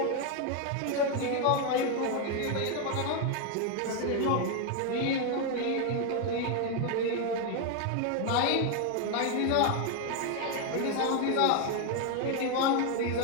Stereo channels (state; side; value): different; both; correlation 0.01